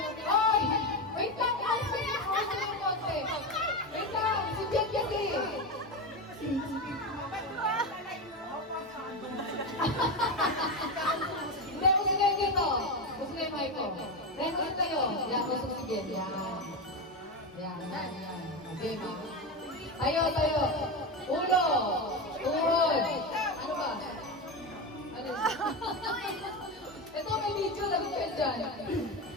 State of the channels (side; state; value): both; normal; correlation 0.16